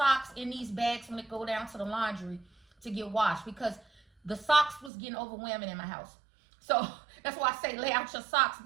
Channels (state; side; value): drops out; left; at 4.9 s